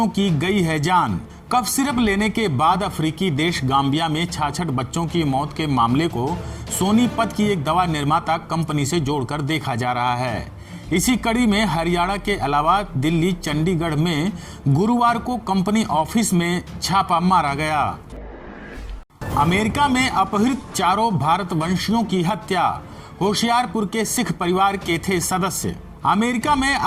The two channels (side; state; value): both; identical; correlation 1.00